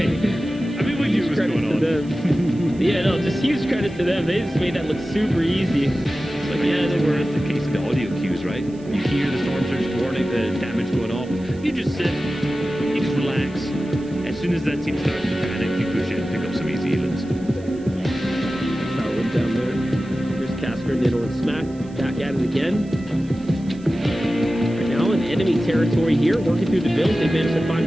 I mean, we knew what was going on. Yeah, no, just huge credit to them. They just made that look super easy. But yeah, they were. It's the case of the audio cues, right? You hear the storm surge warning, the damage going off. You just sit, you just relax. As soon as that team starts to panic, you push in, pick up some easy healings. Solid down there. Here's Casper, Niddle, and Smack. Back at it again. Right now in enemy territory here, working through the builds. They managed to find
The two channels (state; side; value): noise; right; hiss, 27 dB below the sound